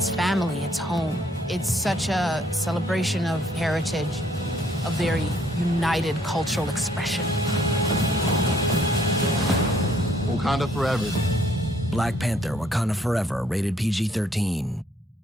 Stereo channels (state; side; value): normal; both; correlation 0.65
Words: family, it's home. It's such a celebration of heritage, a very united cultural expression. Wakanda Forever. Black Panther, Wakanda Forever, rated PG-13.